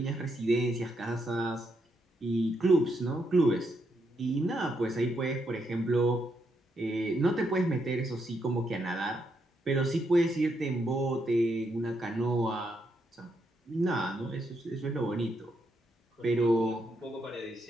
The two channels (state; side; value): normal; both; correlation 0.79